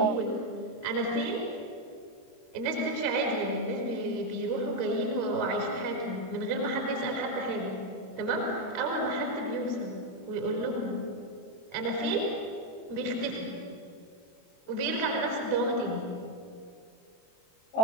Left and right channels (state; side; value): late; right; 22 ms